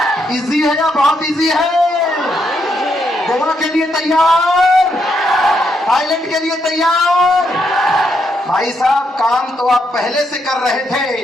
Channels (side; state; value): both; normal; correlation 0.78